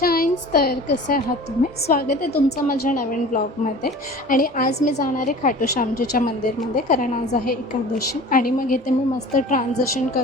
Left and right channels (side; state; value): both; normal; correlation 0.41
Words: तर कसे आहात तुम्ही? स्वागत आहे तुमचं माझ्या नवीन ब्लॉगमध्ये. आणि आज मी जाणार आहे खाटू श्यामजीच्या मंदिरमध्ये, कारण आज आहे एकादशी. आणि मग इथे मी मस्त ट्रान्झिशन